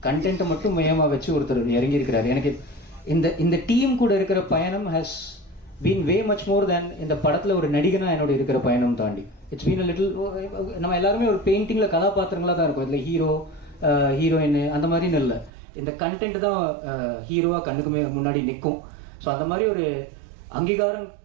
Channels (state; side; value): drops out; left; at 15.5 s